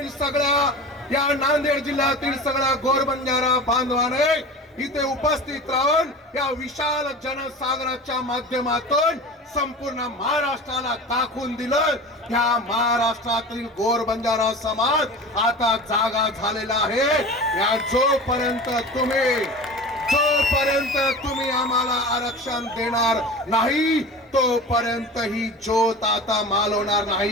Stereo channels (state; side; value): normal; both; correlation 0.34